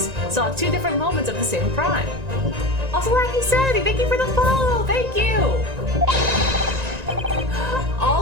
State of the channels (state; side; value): late; left; 1.9 ms